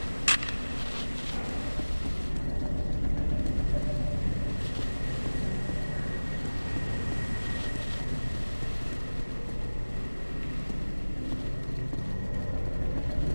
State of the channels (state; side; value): inverted; both; correlation -1.00